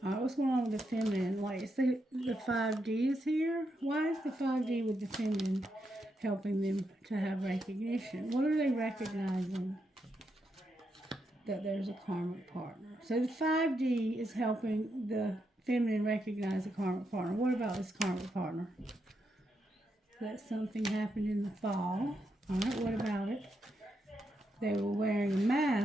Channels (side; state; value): both; normal; correlation 0.82